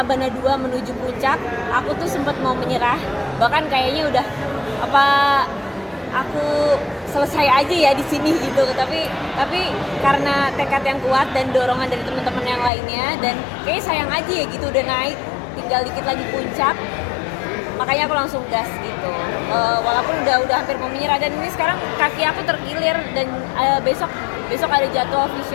2 menuju puncak, aku tuh sempat mau menyerah. Bahkan kayaknya udah aku selesai aja ya di sini gitu. Tapi karena tekad yang kuat dan dorongan dari teman-teman yang lainnya dan kayaknya sayang aja ya gitu udah naik, tinggal dikit lagi puncak. Makanya aku langsung gas gitu. Walaupun udah hampir mau menyerah dan ini sekarang kaki aku terkilir dan besok ada jadwal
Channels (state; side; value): drops out; right; at 12.7 s